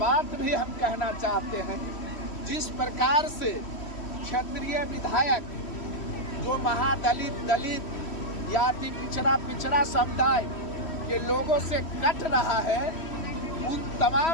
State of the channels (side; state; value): right; late; 3.1 ms